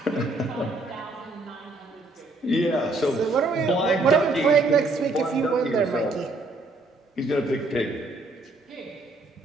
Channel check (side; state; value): left; quieter; 3.0 dB